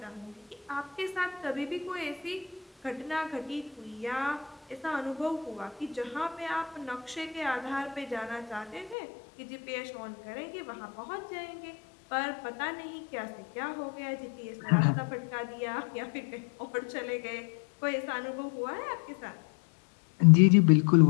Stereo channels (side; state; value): right; drops out; at 9.0 s